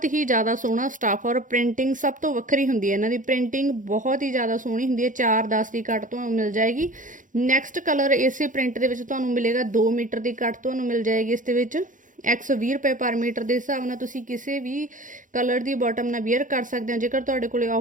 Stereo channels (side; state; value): left; late; 0.38 ms